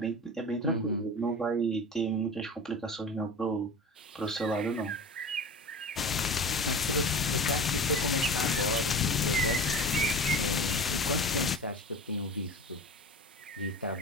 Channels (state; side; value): normal; both; correlation 0.32